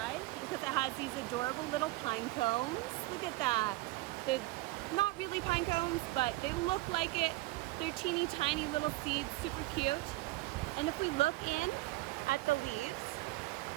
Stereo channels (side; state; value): left; quieter; 19.5 dB